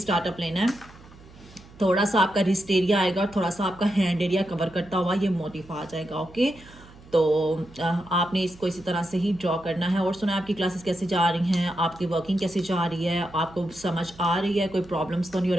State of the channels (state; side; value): noise; right; hum, 22 dB below the sound